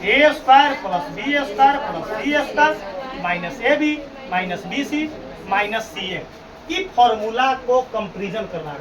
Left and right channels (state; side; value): identical; both; correlation 1.00